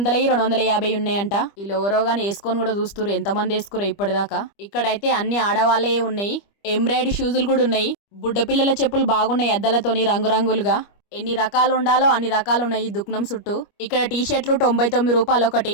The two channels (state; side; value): late; right; 25 ms